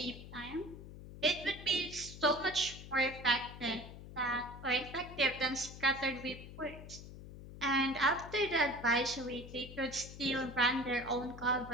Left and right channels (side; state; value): left; noise; hum, 13 dB below the sound